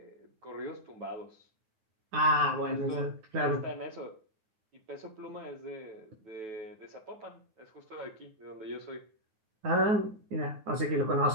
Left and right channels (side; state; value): left; late; 9.6 ms